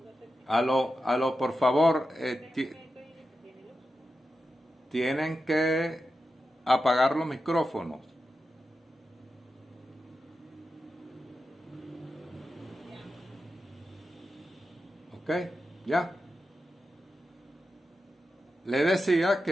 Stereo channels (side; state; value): both; normal; correlation 0.90